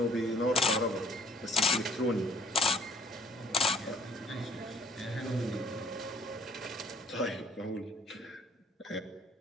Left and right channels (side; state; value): both; normal; correlation 0.60